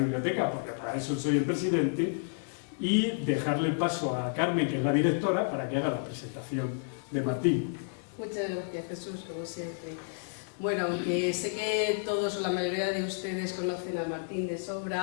porque para eso soy el presidente, y dejarle el paso a Carmen, que es la directora, para que haga la presentación de Martín. Muchas gracias, Jesús, como siempre. Bueno, aunque sé que todos o la mayoría de ustedes conocen a Martín de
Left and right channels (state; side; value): silent; right; digital silence